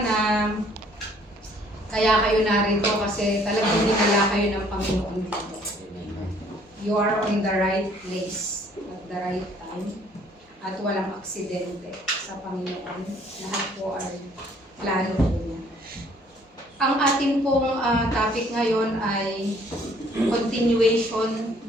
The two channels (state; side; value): normal; both; correlation 0.60